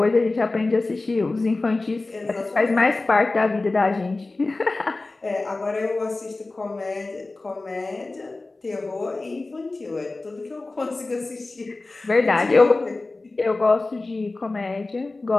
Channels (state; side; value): quieter; right; 3.3 dB